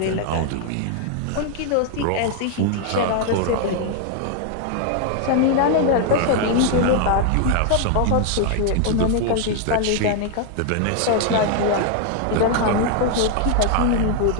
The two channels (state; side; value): different; both; correlation 0.00